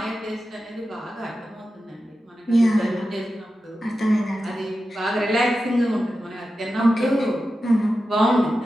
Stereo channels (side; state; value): both; normal; correlation 0.92